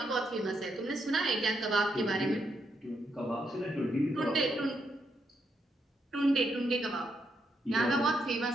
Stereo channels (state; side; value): normal; both; correlation 0.79